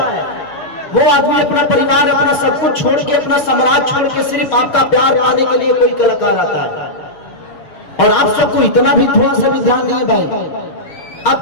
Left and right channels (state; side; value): late; right; 6.5 ms